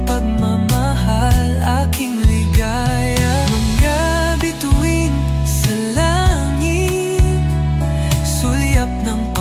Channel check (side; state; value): both; identical; correlation 1.00